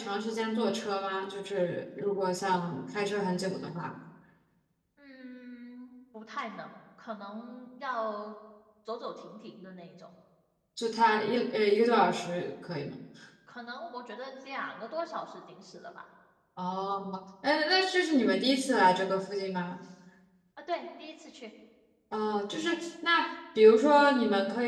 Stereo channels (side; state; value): both; identical; correlation 1.00